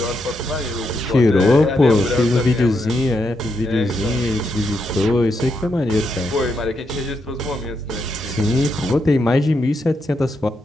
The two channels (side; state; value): both; normal; correlation 0.81